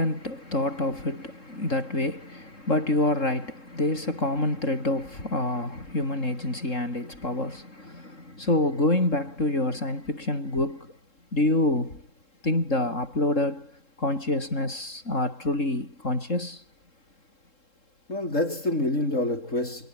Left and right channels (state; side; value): late; right; 3.7 ms